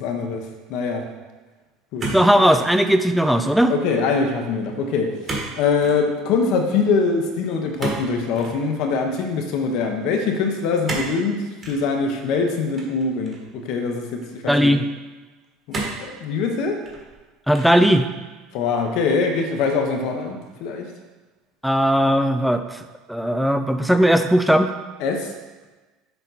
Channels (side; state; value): both; normal; correlation 0.63